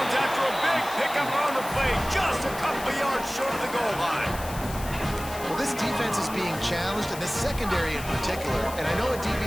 after a big pickup on the play, just a couple of yards short of the goal line. Well, this defense is being challenged, and the secondary in particular. And I know a DB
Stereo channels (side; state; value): left; noise; hiss, 13 dB below the sound